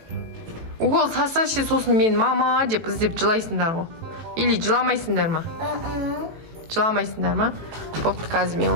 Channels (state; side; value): late; left; 18 ms